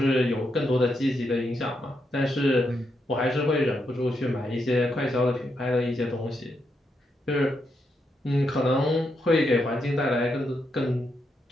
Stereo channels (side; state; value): both; normal; correlation 0.81